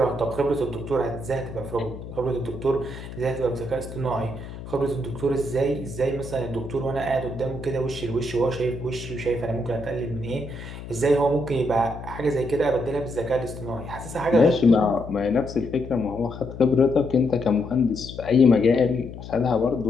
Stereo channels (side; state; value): left; noise; hum, 12 dB below the sound